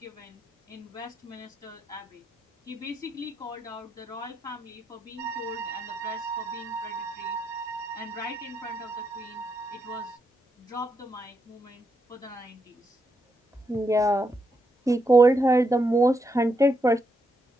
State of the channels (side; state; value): both; normal; correlation 0.81